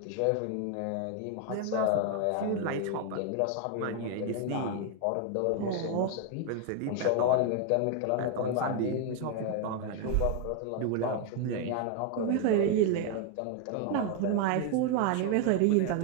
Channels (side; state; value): both; different; correlation 0.00